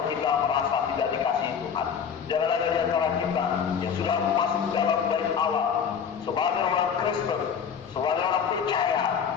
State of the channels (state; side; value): quieter; right; 7.2 dB